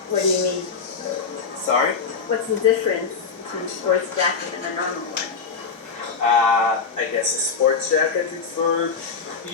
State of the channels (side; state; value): right; quieter; 5.3 dB